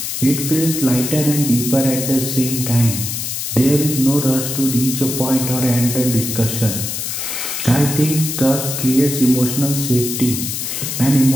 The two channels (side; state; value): left; noise; hiss, 4 dB below the sound